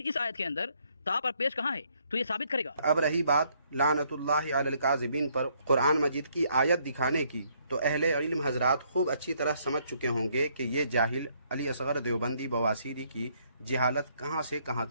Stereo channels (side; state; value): both; inverted; correlation -0.69